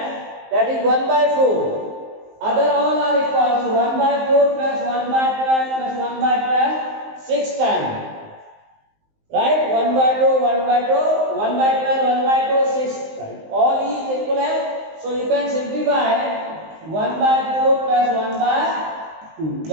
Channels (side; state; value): left; late; 19 ms